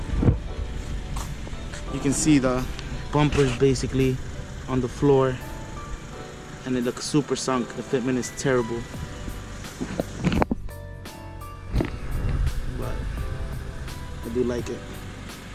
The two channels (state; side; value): identical; both; correlation 1.00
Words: you can see the bumpers basically on the floor, and it looks super sunk. The fitment is terrible, but I do like it.